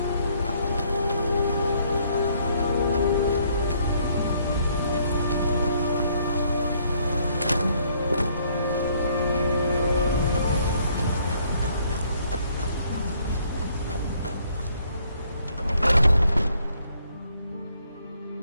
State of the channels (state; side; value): inverted; both; correlation -0.66